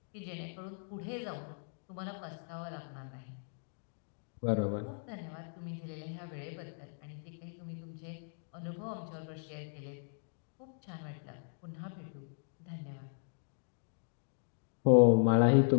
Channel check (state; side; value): silent; right; digital silence